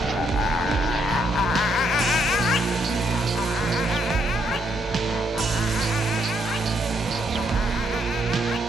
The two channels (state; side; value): normal; both; correlation 0.73